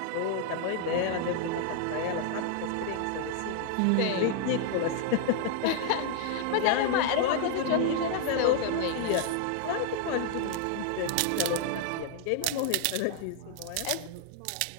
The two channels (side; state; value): both; different; correlation -0.01